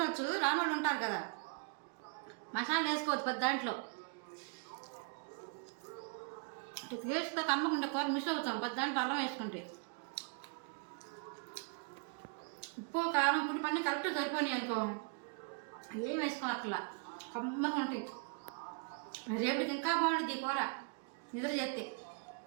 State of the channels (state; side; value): quieter; left; 35.0 dB